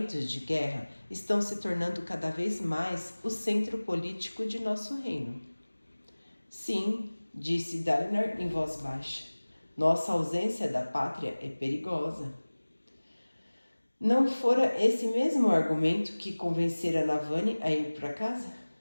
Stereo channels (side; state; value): both; inverted; correlation -1.00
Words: de guerra estão se tornando cada vez mais o centro político de nosso reino. Sim, disse Dalinar em voz baixa. Nossa ausência da pátria é perigosa. Não fora esse mesmo argumento que convencera Navani a ir para casa?